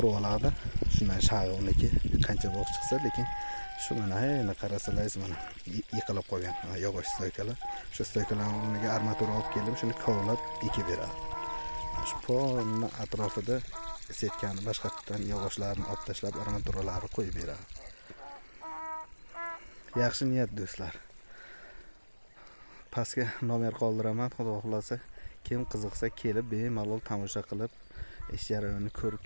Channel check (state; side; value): inverted; both; correlation -1.00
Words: oladi. Shundan shag'i uniki qancha bo'q chiqsa, lekin shu mana endi qarasalaringiz mana yiqilib qolgan yog'och stoykalar. Shu stoykalarga armatura olib keldim, shuni kovlab ekib beradi. Shu polni atrofida setkani boshqatdan yog'ochlarni olib tashlab armaturalarni qo'yib beradi. Yaxshi niyat do'stlar. Pastga nomer qoldiraman, xudo xolasa kim qiziqsa kelib bemalol tomosha qilib ish jarayonini ko'rib